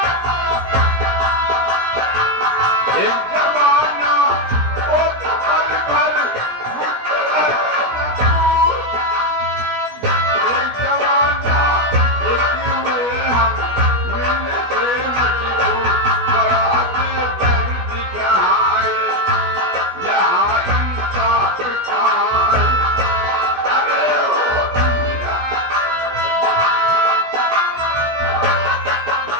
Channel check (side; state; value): left; late; 16 ms